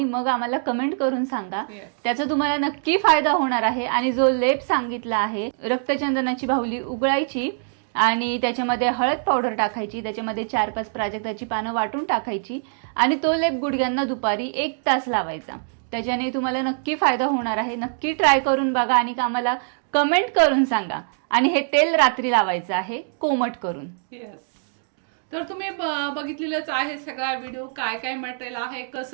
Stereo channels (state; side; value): silent; left; digital silence